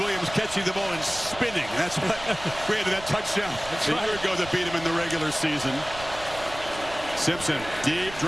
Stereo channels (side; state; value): right; noise; rumble, 15 dB below the sound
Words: Williams catching the ball and spinning. That's what created that touchdown a year ago that beat him in the regular season. Simpson, deep